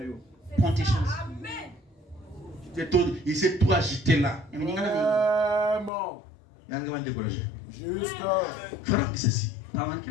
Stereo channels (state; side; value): drops out; right; at 5.9 s